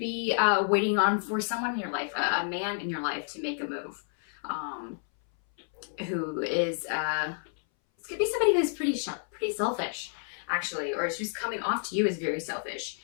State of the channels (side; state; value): right; silent; 58 dB below the other